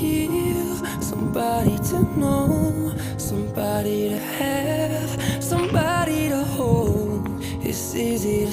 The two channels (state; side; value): identical; both; correlation 1.00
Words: somebody to know, somebody to have, somebody to hold. It's easy to